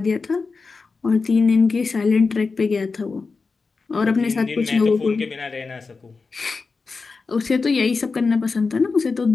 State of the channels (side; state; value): right; quieter; 4.4 dB